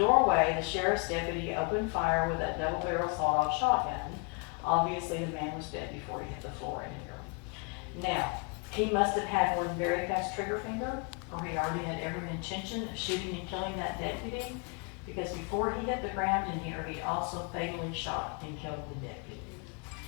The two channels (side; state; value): right; quieter; 32.8 dB